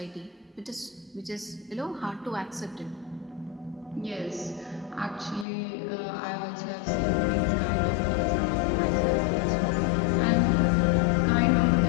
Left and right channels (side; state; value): right; drops out; at 5.5 s